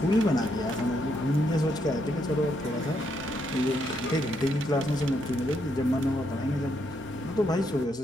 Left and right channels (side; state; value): both; normal; correlation 0.77